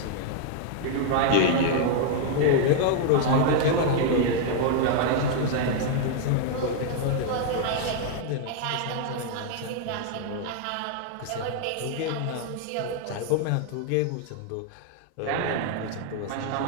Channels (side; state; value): both; different; correlation 0.00